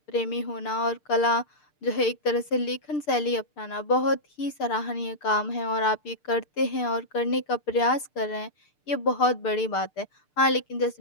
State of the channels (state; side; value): late; right; 6.7 ms